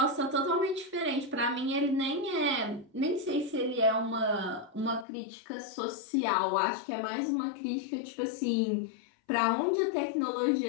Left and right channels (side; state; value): right; drops out; at 5.1 s